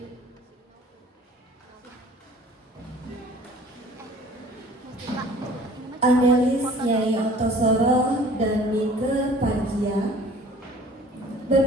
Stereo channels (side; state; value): both; normal; correlation 0.49